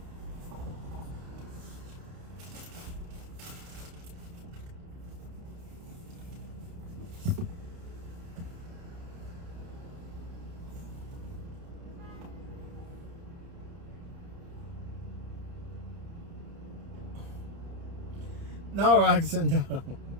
No, Roxanne, no.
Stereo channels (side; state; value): left; late; 29 ms